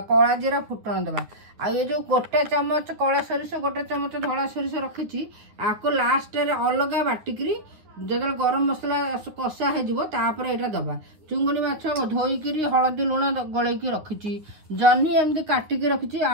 कला जीरा फुटण दबा। आ ये जो गोटे चमच कला सोरिष गोटे चमच धला सोरिष रखी आपको लास्ट रे अलग बाटिकी जो गरम मसला कषा होपर यहाँ दबा। चुंगुड़ी माछ धोईकी हलदी लुण गलैकी रखी। जन्नी एमती काटिकी रखी।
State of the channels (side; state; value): left; late; 9.9 ms